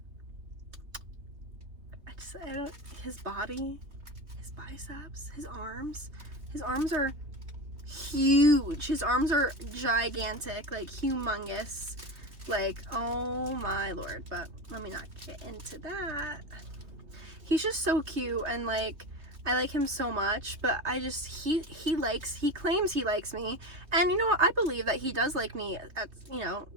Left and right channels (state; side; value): late; left; 3.2 ms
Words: body, his biceps, his arms are huge. His arms are gigantic, like, humongous. Like, oh my lord. But let me not get into that. He's just so cute, and like, I like him so much, but I just, he claims he likes me, and you know what, I believe that he does like me, at, you know,